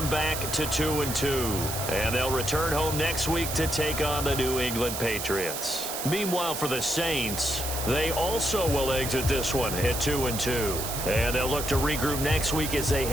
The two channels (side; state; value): right; noise; hiss, 5 dB below the sound